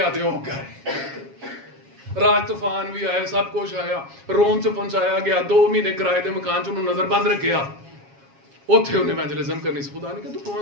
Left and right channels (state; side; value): late; left; 7.3 ms